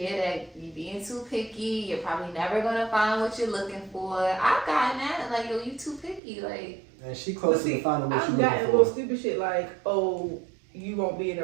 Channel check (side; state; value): left; drops out; at 6.2 s